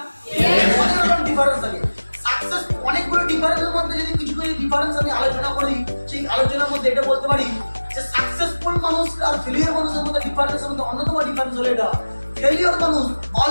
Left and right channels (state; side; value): inverted; both; correlation -1.00